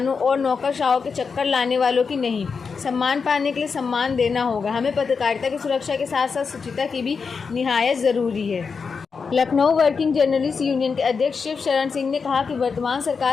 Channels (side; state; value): right; quieter; 5.3 dB